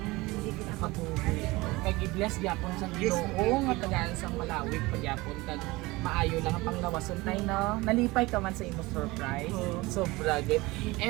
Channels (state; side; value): quieter; left; 21.6 dB